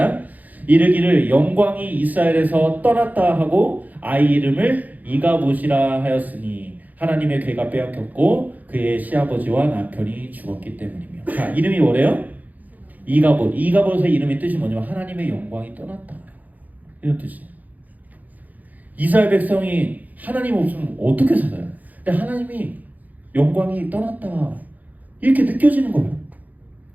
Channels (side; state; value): left; late; 0.080 ms